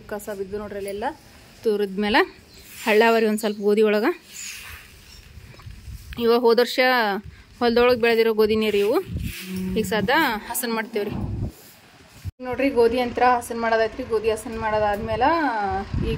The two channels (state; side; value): identical; both; correlation 1.00